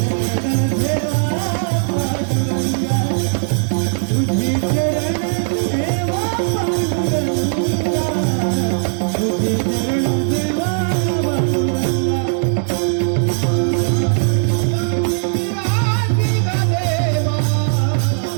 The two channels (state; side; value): silent; left; digital silence